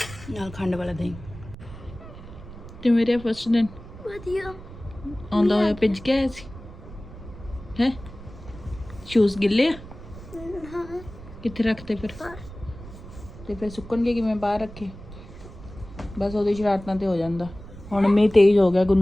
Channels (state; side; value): noise; right; rumble, 15 dB below the sound